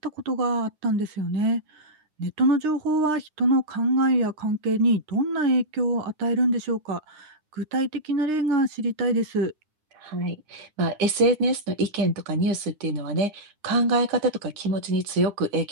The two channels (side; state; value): left; late; 9.9 ms